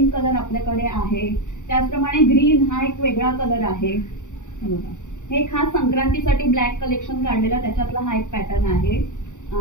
कलर आपल्याकडे आहे। त्याचप्रमाणे ग्रीन हा एक वेगळा कलर आहे। हे खास संक्रांतीसाठी ब्लॅक कलेक्शन काढलेला, त्याच्यातला हा एक पॅटर्न आहे।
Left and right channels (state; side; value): late; right; 0.85 ms